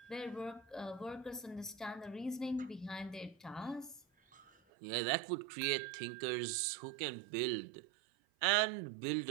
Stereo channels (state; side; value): drops out; left; at 4.5 s